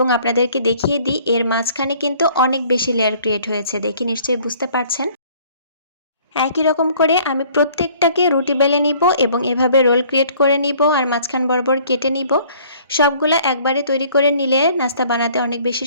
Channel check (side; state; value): both; inverted; correlation -0.56